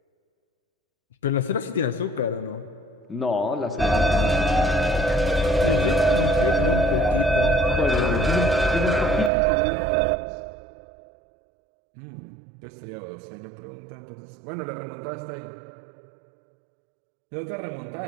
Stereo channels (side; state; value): left; drops out; at 9.3 s